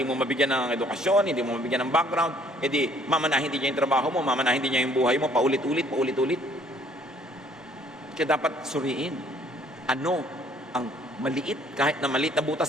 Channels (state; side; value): normal; both; correlation 0.60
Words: mo mabigyan ng edukasyon, hindi mo mabigyan ng background, mamanahin din niya yung trabaho mo, mamanahin din niya yung buhay mo, paulit-ulit. Kaya dapat suriin. Ano ang maliit, kahit na maliit na